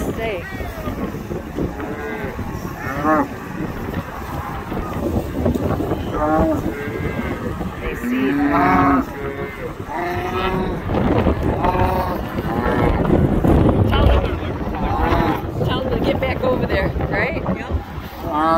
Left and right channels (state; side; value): identical; both; correlation 1.00